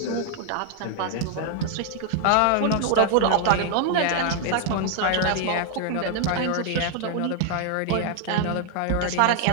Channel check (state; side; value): different; both; correlation 0.00